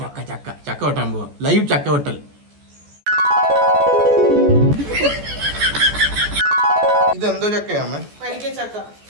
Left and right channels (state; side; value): late; left; 14 ms